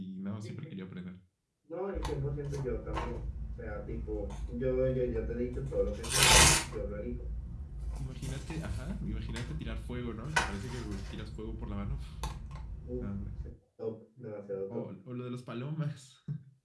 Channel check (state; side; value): identical; both; correlation 1.00